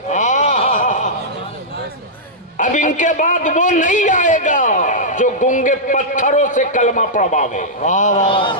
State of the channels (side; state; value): both; normal; correlation -0.11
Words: अब इनके बाद वो नहीं आएगा जो गूंगे पत्थरों से कलमा पढ़वावे।